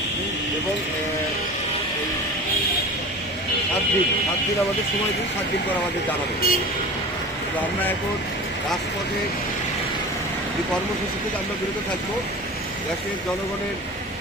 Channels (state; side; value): normal; both; correlation 0.34